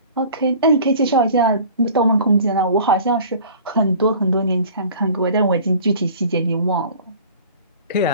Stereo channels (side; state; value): both; inverted; correlation -0.45